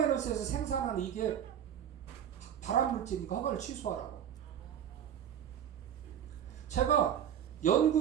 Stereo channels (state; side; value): quieter; left; 9.4 dB